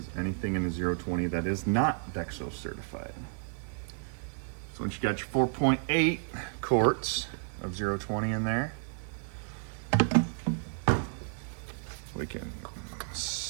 anything in the 020 that is not Dexo certified. So once you got your 4.8 quarts of 020 in there, we can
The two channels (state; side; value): silent; left; digital silence